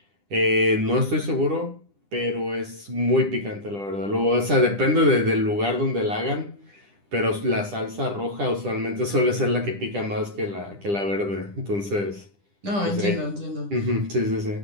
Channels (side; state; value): left; late; 10 ms